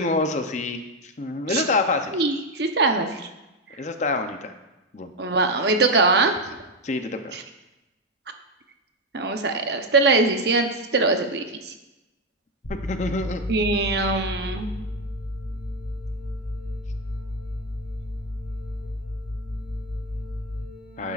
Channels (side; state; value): both; normal; correlation 0.08